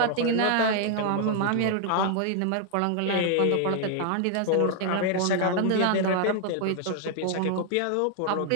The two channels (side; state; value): both; different; correlation 0.00